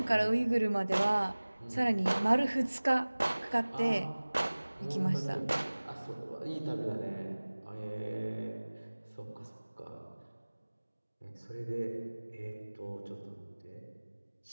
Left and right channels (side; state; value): both; inverted; correlation -1.00